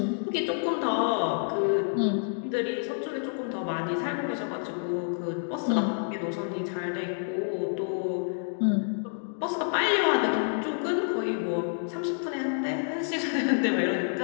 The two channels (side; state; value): right; silent; digital silence